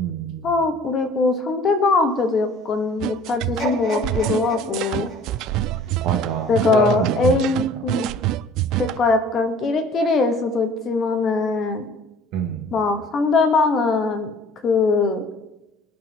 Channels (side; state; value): both; normal; correlation 0.50